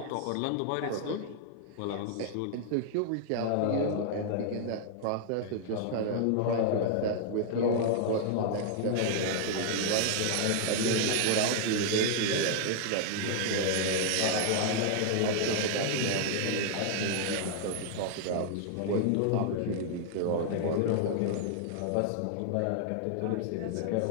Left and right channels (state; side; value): different; both; correlation -0.01